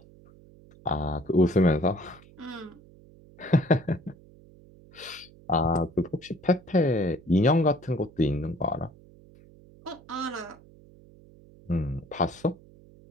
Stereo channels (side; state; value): right; noise; hum, 24 dB below the sound